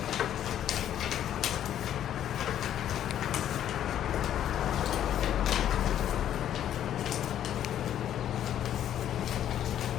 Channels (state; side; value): quieter; right; 10.8 dB